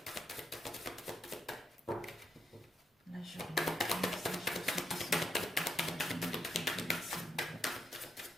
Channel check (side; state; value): both; normal; correlation 0.80